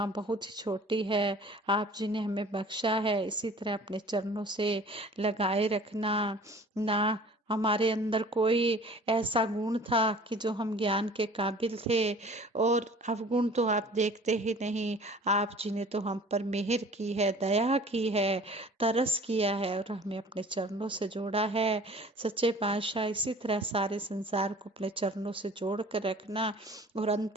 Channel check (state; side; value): normal; both; correlation 0.47